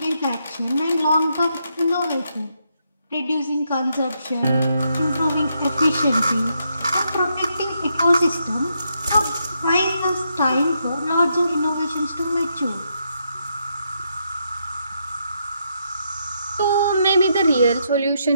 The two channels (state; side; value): inverted; both; correlation -0.79